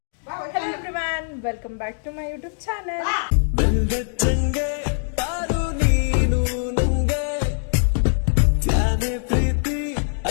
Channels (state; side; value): silent; right; digital silence